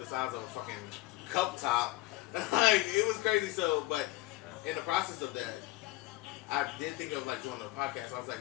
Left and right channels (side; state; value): right; quieter; 18.5 dB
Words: the size of a fucking cup top. Like it was crazy. So, but in the process of that, I did think of like doing the podcast. I was